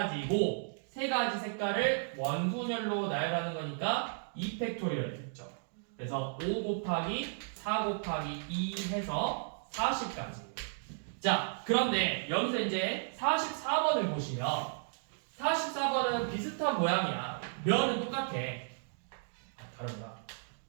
3가지 색깔을 원순열로 나열하는 거니까 2팩토리얼 됐죠. 그래서 5 곱하기 4 곱하기 2 해서 40까지. 자, 그런데 여기서 이제 44번을 보시면 44번은 비슷한 모양이야. 면은 똑같아. 다른가?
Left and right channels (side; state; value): left; silent; digital silence